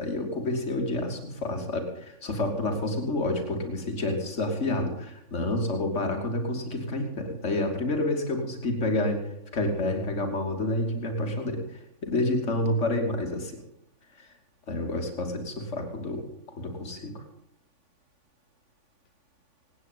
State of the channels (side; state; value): right; late; 3.5 ms